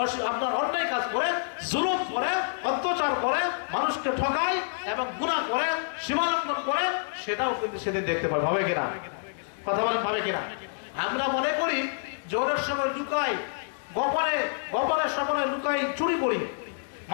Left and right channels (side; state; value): right; silent; digital silence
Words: আপনার অন্যায় কাজ করে, জুলুম করে, অত্যাচার করে, মানুষকে ঠকায় এবং গুনাহ করে, সীমালঙ্ঘন করে, সেটাও কিন্তু সেদিন দেখতে পাবে। হবে কিনা? কথা বলেন ভাবে কিনা? আমরা মনে করি জোরের সময় লুকাই, গোপনের সময় লুকাই, চুরি করি,